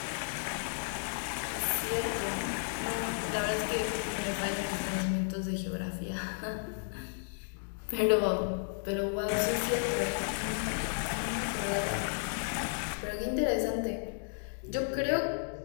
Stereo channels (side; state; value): right; silent; digital silence